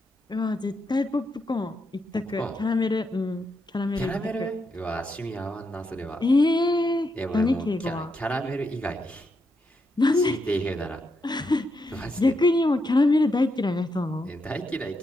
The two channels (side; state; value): both; normal; correlation 0.82